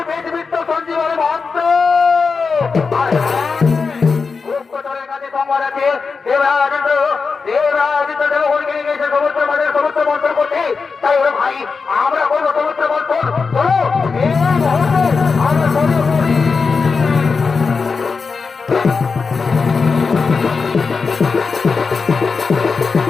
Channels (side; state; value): right; quieter; 4.9 dB